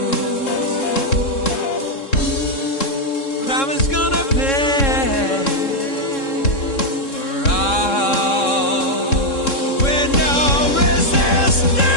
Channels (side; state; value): right; late; 3.7 ms